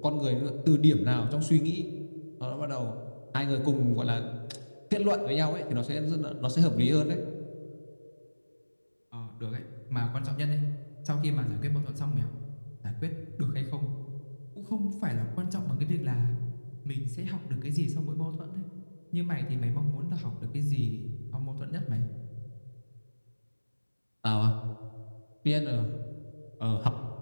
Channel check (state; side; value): inverted; both; correlation -1.00